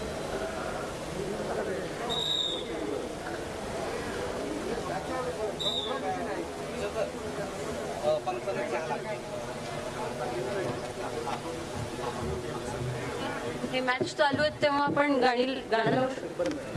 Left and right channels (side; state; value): both; identical; correlation 1.00